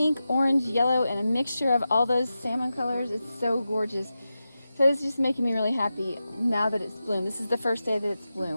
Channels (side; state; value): both; inverted; correlation -0.92